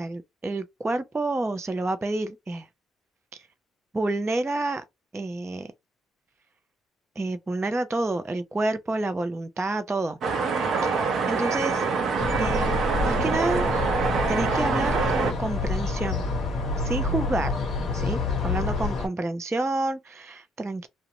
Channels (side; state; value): both; normal; correlation 0.71